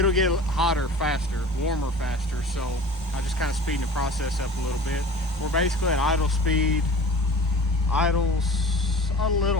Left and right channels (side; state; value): both; normal; correlation 0.41